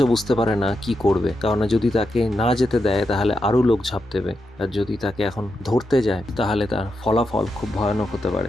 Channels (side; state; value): both; normal; correlation 0.86